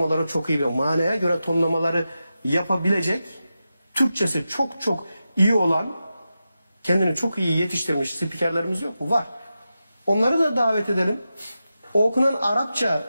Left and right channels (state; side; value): inverted; both; correlation -0.91